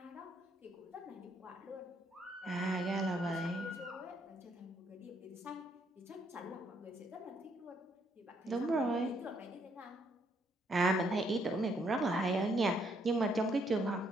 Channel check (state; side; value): normal; both; correlation 0.71